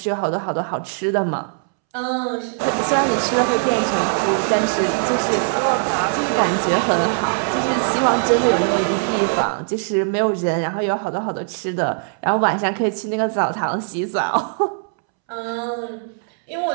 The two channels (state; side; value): silent; left; 65 dB below the other